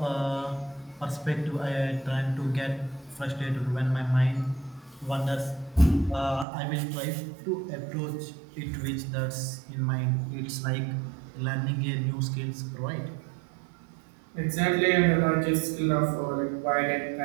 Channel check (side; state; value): left; drops out; at 6.5 s